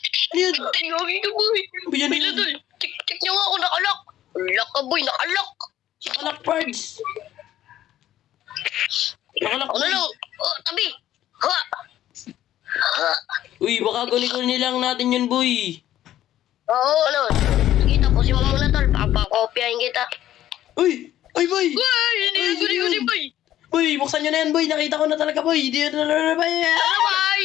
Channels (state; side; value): quieter; right; 12.7 dB